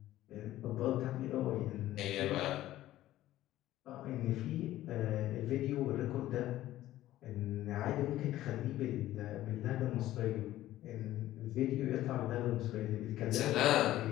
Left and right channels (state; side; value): quieter; right; 14.5 dB